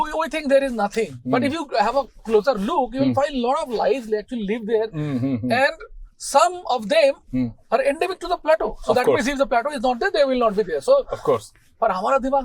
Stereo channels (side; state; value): both; identical; correlation 1.00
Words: we think there is nothing. But if you have a closer look, you will find a lot of lives they actually live there. And some of them are endemic to the plateau. So that means if the plateau is not there, they will not be there. So of course. पर हमारा